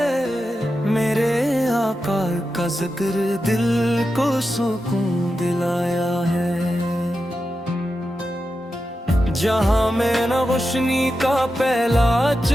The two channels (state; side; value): normal; both; correlation 0.90